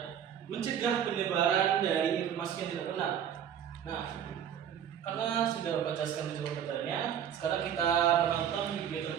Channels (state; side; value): quieter; left; 9.1 dB